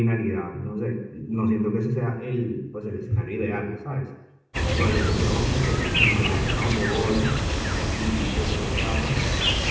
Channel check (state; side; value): identical; both; correlation 1.00